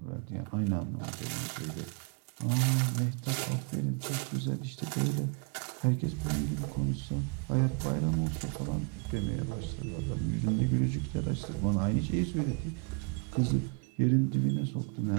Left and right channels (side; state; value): left; quieter; 34.6 dB